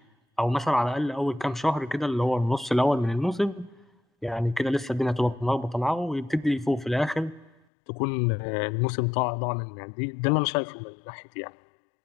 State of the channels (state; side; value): drops out; right; at 7.6 s